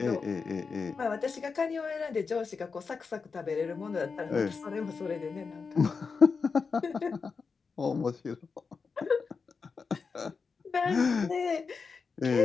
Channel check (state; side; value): quieter; right; 5.1 dB